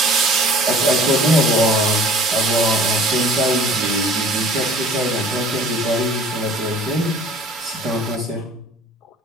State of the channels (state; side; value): normal; both; correlation 0.48